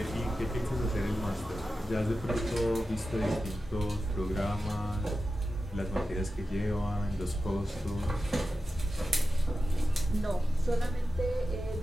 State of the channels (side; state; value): both; normal; correlation 0.92